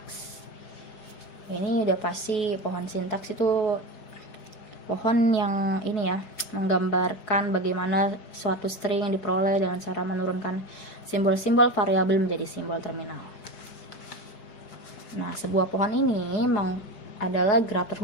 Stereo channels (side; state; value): right; late; 4.7 ms